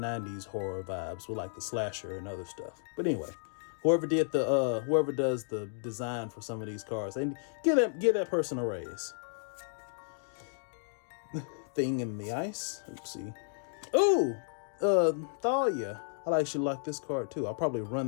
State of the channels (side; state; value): right; silent; digital silence